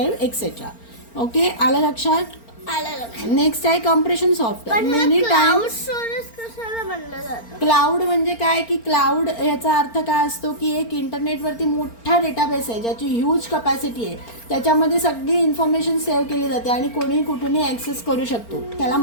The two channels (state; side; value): late; right; 4.4 ms